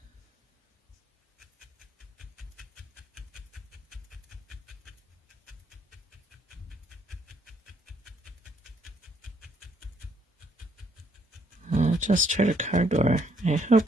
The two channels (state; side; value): normal; both; correlation 0.69